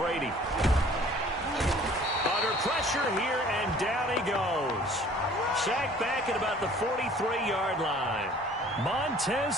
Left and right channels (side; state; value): both; normal; correlation 0.52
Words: Under pressure here, and down he goes. Sacked back at about the 43-yard line. Montez